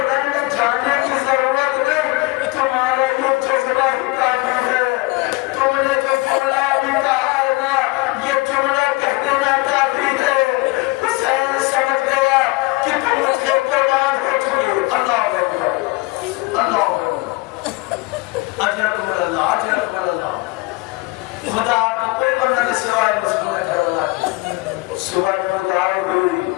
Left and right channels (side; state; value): right; quieter; 23.4 dB